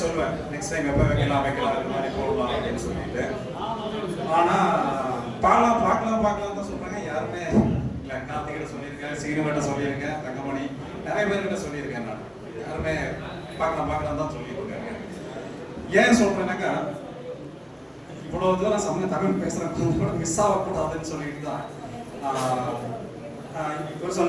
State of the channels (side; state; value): both; identical; correlation 1.00